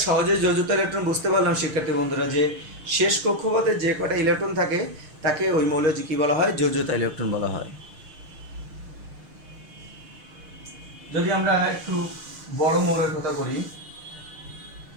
সহজে যোজ্যতা ইলেকট্রন বুঝতে পারলাম শিক্ষার্থী বন্ধুরা, যে শেষ কক্ষপথে যে কটা ইলেকট্রন থাকে তাকে ওই মৌলের কি বলা হয়? যোজ্যতা ইলেকট্রন বলা হয়। যদি আমরা একটু বড় মৌলের কথা বলি,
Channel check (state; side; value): late; left; 6.5 ms